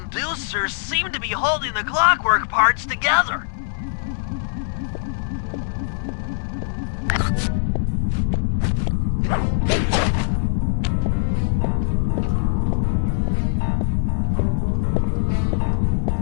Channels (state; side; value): silent; right; digital silence